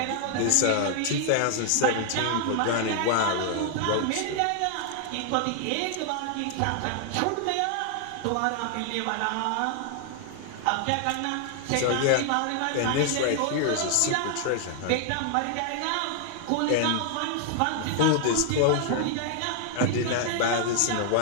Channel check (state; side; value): different; both; correlation 0.00